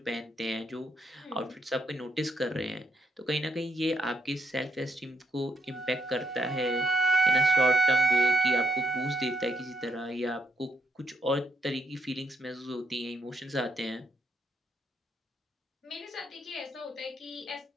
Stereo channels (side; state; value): both; normal; correlation 0.76